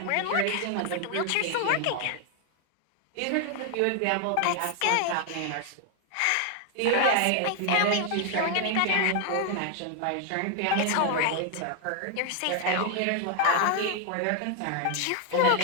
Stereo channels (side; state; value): both; different; correlation 0.00